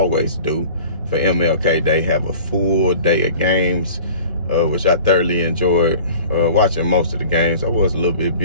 do for MLK. They have a full day of games, which I thoroughly enjoyed watching most of the games. I was a little bit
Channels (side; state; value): both; inverted; correlation -0.43